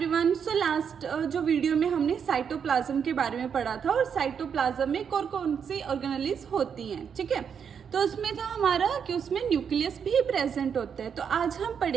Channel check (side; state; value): left; quieter; 7.2 dB